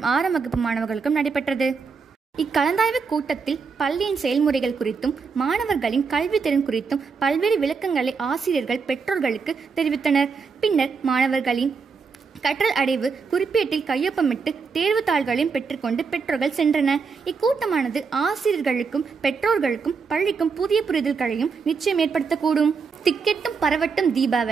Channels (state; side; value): quieter; left; 5.2 dB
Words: 6ஆம் வகுப்பு மாணவர்களுக்கும் நடைபெற்றது. இக்கலந்தாய்வு கூட்டத்தில் பள்ளியின் செயல்முறைகள் குறித்தும் மாணவர்களின் கல்வி திறன் குறித்தும் பல்வேறு விளக்கங்களை ஆசிரியர்கள் பெற்றோர்களுக்கு தெரிவித்தனர். பின்னர் மாணவர்களின் கற்றல் அடைவு குறிப்பேட்டில் கையொப்பமிட்டு தேர்வு தாள்களையும் பெற்றுக்கொண்டு பெற்றோர்கள் சென்றனர். இக்கூட்டமானது ஆசிரியர்களுக்கும் பெற்றோர்களுக்கும் பள்ளிக்கும் புதிய புரிதல்களையும் நிச்சயம் ஏற்படுத்தக்கூடும். திக்கெட்டும் பரவட்டும்